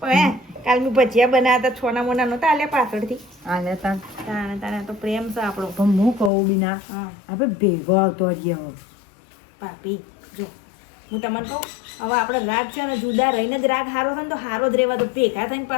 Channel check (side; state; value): right; drops out; at 6.3 s